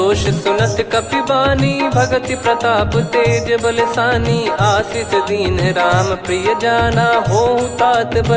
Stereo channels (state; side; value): identical; both; correlation 1.00